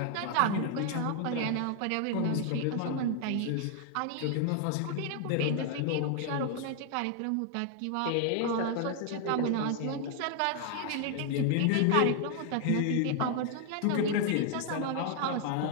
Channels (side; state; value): both; different; correlation 0.00